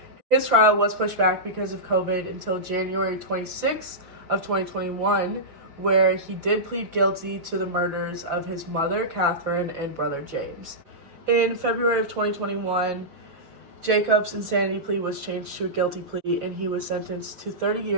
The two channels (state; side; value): late; left; 6.1 ms